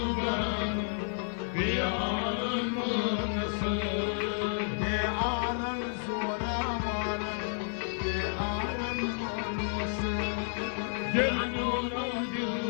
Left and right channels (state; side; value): silent; right; digital silence